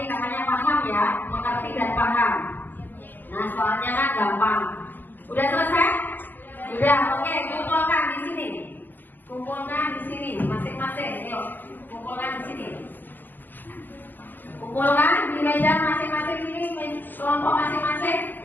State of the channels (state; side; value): late; right; 0.090 ms